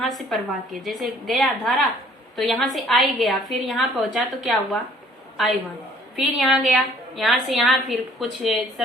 से प्रवाह की, जैसे गया धारा तो यहाँ से I गया, फिर यहाँ पहुंचा तो क्या हुआ I1। फिर यहाँ गया, यहाँ से यहाँ फिर कुछ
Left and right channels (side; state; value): both; normal; correlation 0.58